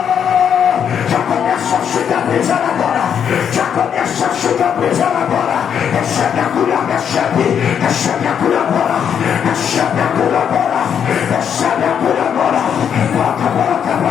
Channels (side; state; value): right; quieter; 8.1 dB